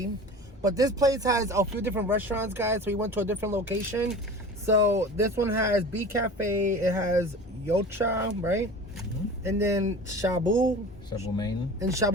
But this place has a few different restaurants, guys. So we went to a different location. So this one has B Cafe. It has Yocha, right? Mm-hmm. And then Shabu Main. And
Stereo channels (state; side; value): normal; both; correlation 0.37